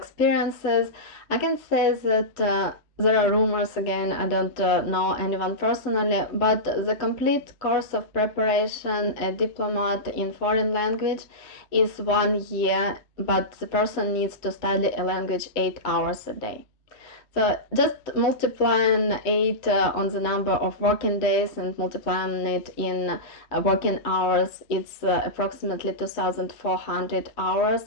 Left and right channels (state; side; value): late; left; 3.1 ms